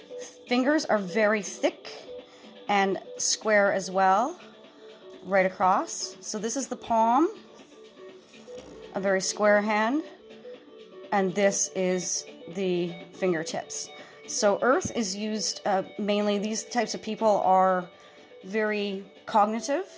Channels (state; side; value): identical; both; correlation 1.00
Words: fingers are very thick and square as well, right across. So this is the palm, a very square hand, and this is the fingertips. So earth is used mainly, these types of people are very cognitive.